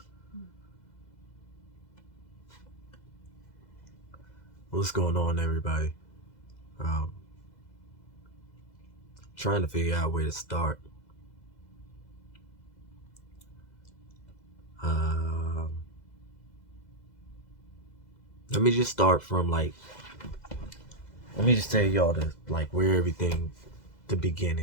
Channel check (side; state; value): right; late; 2.0 ms